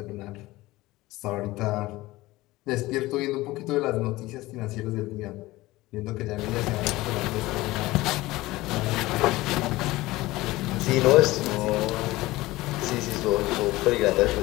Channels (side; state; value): right; quieter; 18.9 dB